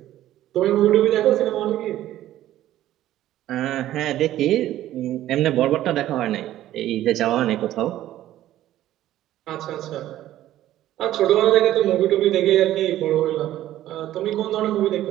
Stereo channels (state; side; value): quieter; left; 13.5 dB